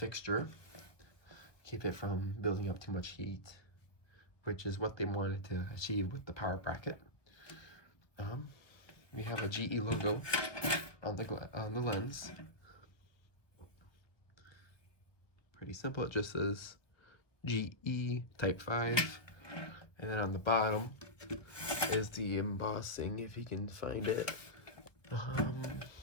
keep it from building up too much heat, which is what they wanted to achieve with the power bracket. We have a GE logo on the lens. Pretty simple, it just says GE Type 5, and then on the bottom is the embossing, if you can find it. It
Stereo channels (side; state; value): right; late; 1.0 ms